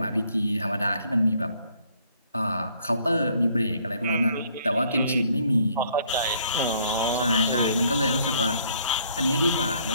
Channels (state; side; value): inverted; both; correlation -0.64